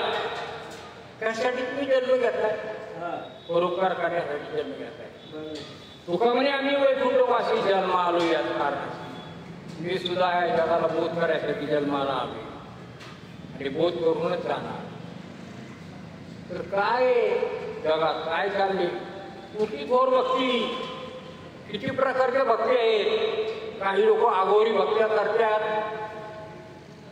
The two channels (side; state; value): both; identical; correlation 1.00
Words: त्यासाठी तुम्ही जन्म घेताय, परोपकार करण्यासाठी जन्म घेताय. तुका म्हणे आम्ही वैकुंठवासी जन्म आलो याच कारणासाठी. मी सुद्धा या जगाला बोध करायसाठी जन्माला आलो आणि बोध करूनच जाणार. तर काय जगात काय चालले? कुठली थोर भक्ती? किती प्रकारच्या भक्ती आहेत? काही लोक आगोरी भक्त्या करतात.